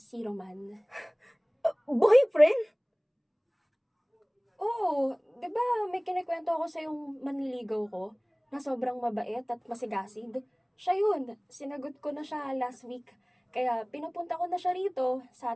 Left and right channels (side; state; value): both; identical; correlation 1.00